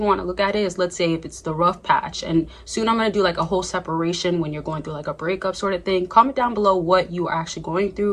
want to look at it is, let's say if it's the rough patch, and soon I'm going to do like a whole separation when you're going through like a breakup sort of thing. Comment down below what you are actually going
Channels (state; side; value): identical; both; correlation 1.00